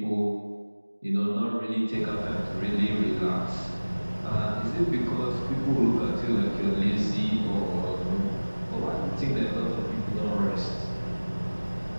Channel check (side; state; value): both; inverted; correlation -1.00